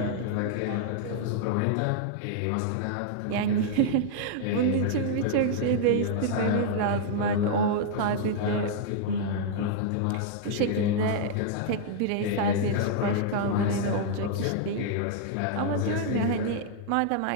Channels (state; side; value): different; both; correlation -0.01